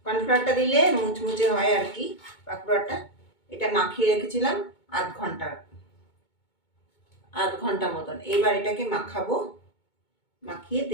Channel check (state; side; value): late; right; 2.2 ms